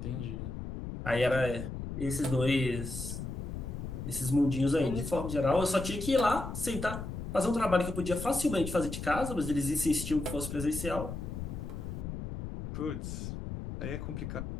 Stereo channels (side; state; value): left; noise; rumble, 7 dB below the sound